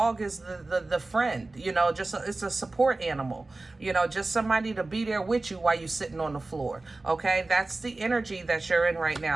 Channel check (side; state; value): left; quieter; 3.2 dB